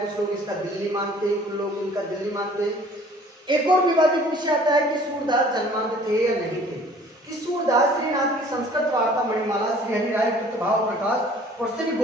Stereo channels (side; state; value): both; normal; correlation 0.52